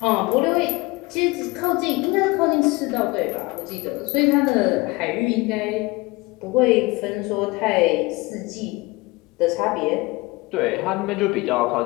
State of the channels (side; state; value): right; quieter; 23.4 dB